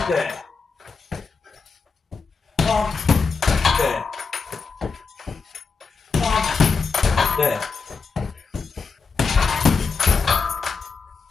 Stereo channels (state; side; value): quieter; right; 4.9 dB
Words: there. Palm, there. Palm, there.